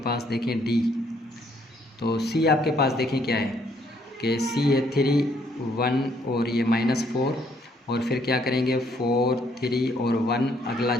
देखें d, तो c आपके पास देखें क्या है कि c है 3 1 और ये -4। और फिर क्या करेंगे 4 3 और 1, अगला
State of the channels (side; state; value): both; normal; correlation 0.68